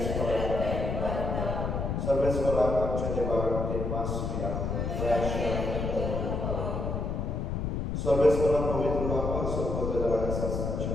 सर्वेस्वराक आमच्या देवाक देवास मिया सर्वेस्वरा पवित्र बापा सर्वोदराच्या शासनाच्या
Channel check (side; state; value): left; noise; rumble, 1 dB below the sound